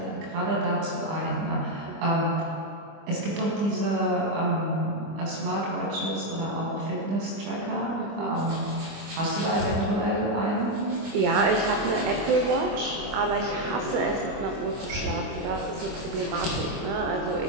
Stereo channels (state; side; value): late; left; 25 ms